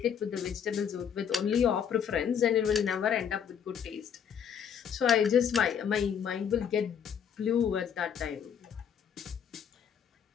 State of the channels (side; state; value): right; quieter; 7.9 dB